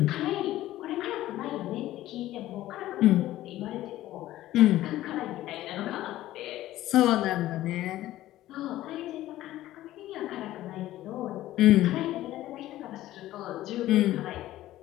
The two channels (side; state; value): right; quieter; 14.8 dB